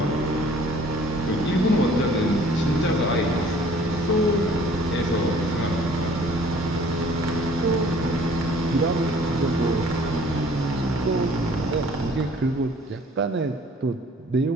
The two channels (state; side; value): normal; both; correlation 0.54